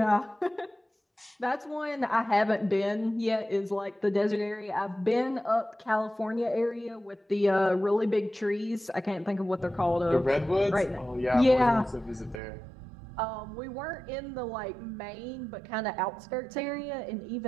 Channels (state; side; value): drops out; left; at 12.4 s